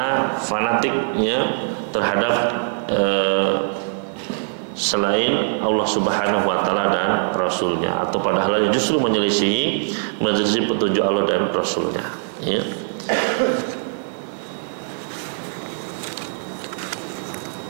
fanatik, ya, terhadap selain Allah Subhanahu wa taala dan Rasulnya, atau pada hal yang justru menyelisihi petunjuk Allah dan Rasulnya, ya.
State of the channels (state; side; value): silent; left; digital silence